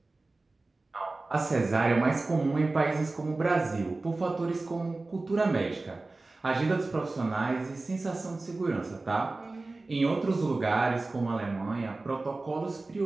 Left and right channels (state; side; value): quieter; left; 3.3 dB